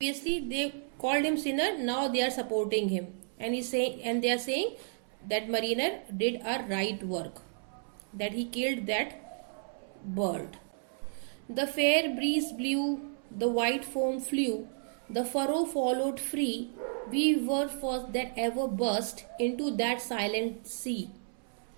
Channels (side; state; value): left; silent; 56 dB below the other